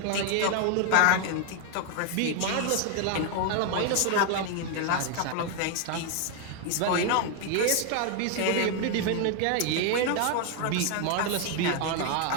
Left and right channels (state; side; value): different; both; correlation 0.01